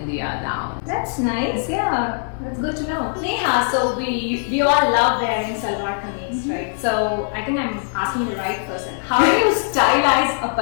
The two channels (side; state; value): right; silent; digital silence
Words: now. That's nice, yeah. That's good to know. Neha, so we all love wearing salwar kameez. right? So I think I'm asking the right person. How do you stylize a